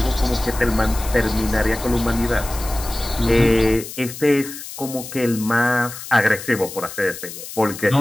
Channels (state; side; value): noise; left; hiss, 11 dB below the sound